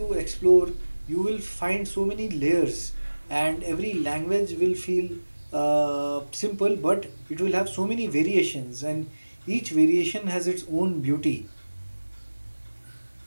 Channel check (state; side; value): inverted; both; correlation -1.00